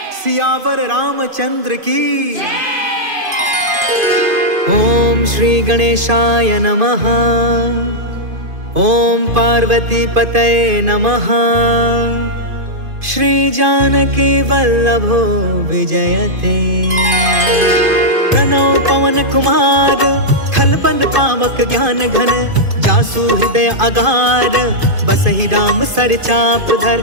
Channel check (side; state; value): left; late; 2.5 ms